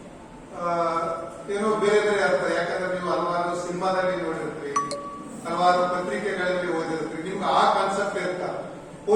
ಏನೋ ಬೇರೆ ಬೇರೆ ಅರ್ಥ. ಯಾಕಂದ್ರೆ ನೀವು ಹಲವಾರು ಸಿನಿಮಾದಲ್ಲಿ ನೋಡಿರ್ತೀರಿ, ಹಲವಾರು ಪತ್ರಿಕೆಗಳಲ್ಲಿ ಓದಿರ್ತೀರಿ, ನಿಮ್ಗೆ ಆ ಕಾನ್ಸೆಪ್ಟ್ ಇರ್ತ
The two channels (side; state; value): both; identical; correlation 1.00